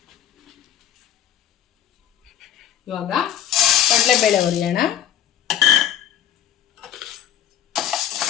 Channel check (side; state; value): right; quieter; 10.5 dB